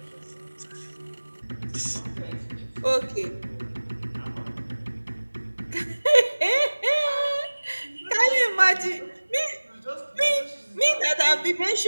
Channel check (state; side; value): inverted; both; correlation -1.00